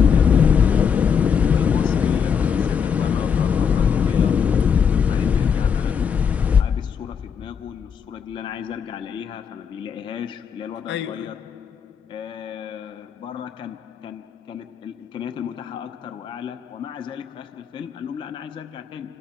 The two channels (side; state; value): right; quieter; 6.9 dB